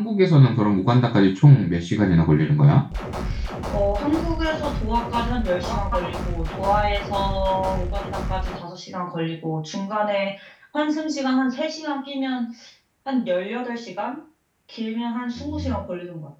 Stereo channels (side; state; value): both; identical; correlation 1.00